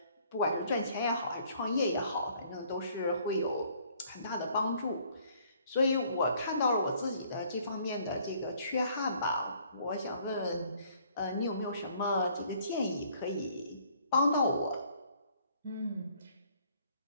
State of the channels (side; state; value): both; inverted; correlation -0.61